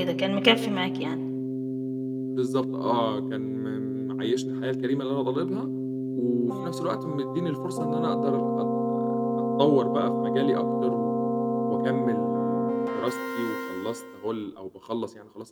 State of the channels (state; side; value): identical; both; correlation 1.00